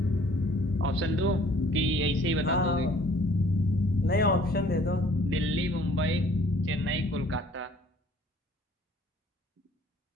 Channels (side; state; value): both; normal; correlation 0.56